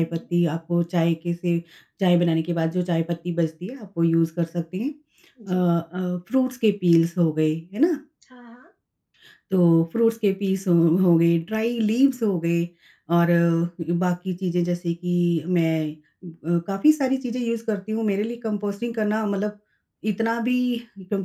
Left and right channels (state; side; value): identical; both; correlation 1.00